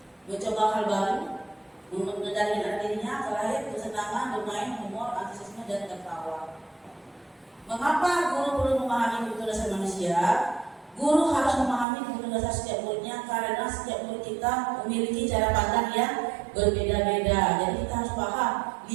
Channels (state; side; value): drops out; left; at 11.9 s